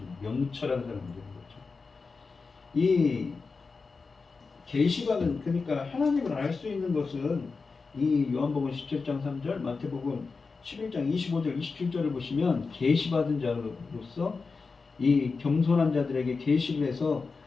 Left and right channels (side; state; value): right; quieter; 4.5 dB